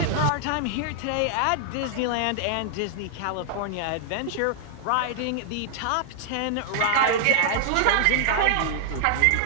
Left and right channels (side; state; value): both; different; correlation -0.01